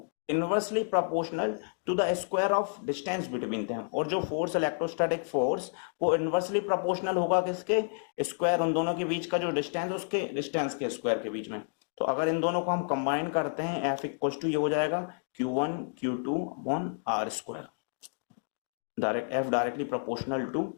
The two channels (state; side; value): silent; right; digital silence